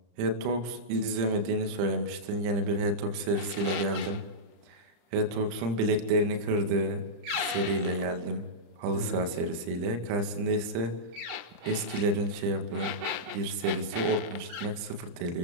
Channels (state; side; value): late; left; 35 ms